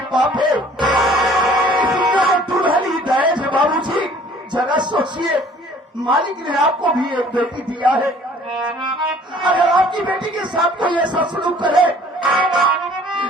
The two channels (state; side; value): normal; both; correlation 0.54